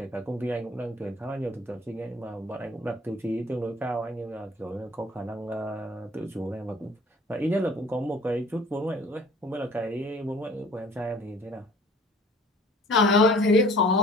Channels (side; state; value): both; normal; correlation 0.51